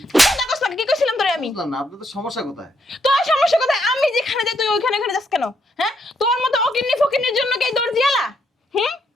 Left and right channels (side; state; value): both; normal; correlation 0.76